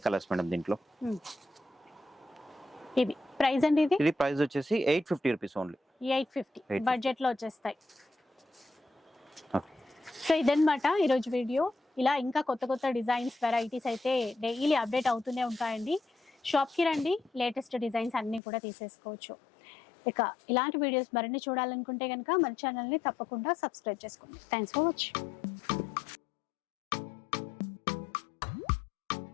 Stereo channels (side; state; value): right; drops out; at 18.4 s